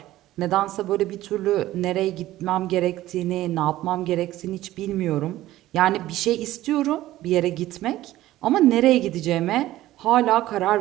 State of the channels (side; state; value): left; quieter; 15.3 dB